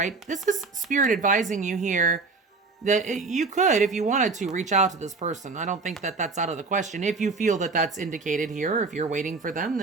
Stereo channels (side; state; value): left; quieter; 4.1 dB